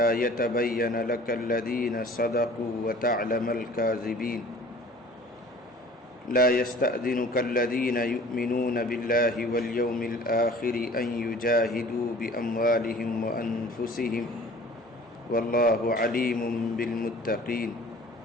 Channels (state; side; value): normal; both; correlation 0.48